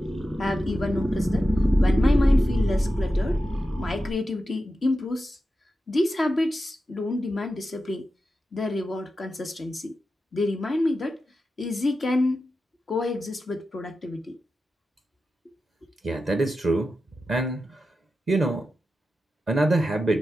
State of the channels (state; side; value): normal; both; correlation 0.91